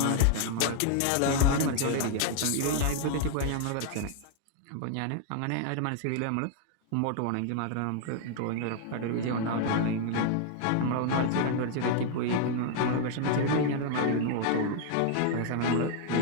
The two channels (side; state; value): both; different; correlation -0.01